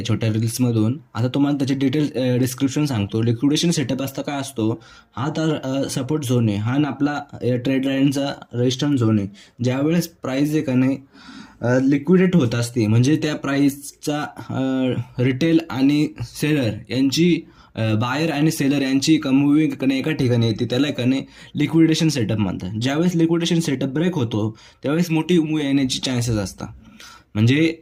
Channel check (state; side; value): identical; both; correlation 1.00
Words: छोट्या रील्समधून. आता तुम्हाला त्याचे डिटेल डिस्क्रिप्शन सांगतो. लिक्विडेशन सेटअप असता काय असतो, हा तर सपोर्ट झोन आहे, हा ना आपला ट्रेड लाईनचा रेजिस्टन्स झोन आहे. ज्यावेळेस प्राईस आहे का नाही लिक्विडेट होत असते, म्हणजे त्या प्राईसचा रिटेल आणि सेलर यांची बायर आणि सेलर यांची मूविंग कने एका ठिकाणी येते, त्याला कने लिक्विडेशन सेटअप म्हणतात. ज्यावेळेस लिक्विडेशन सेटअप ब्रेक होतो त्यावेळेस मोठी मूव येण्याची चान्सेस असतात. म्हणजे